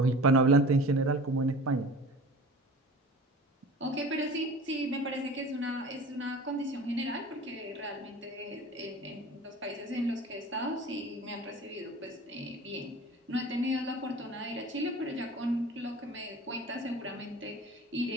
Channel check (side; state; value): both; normal; correlation 0.40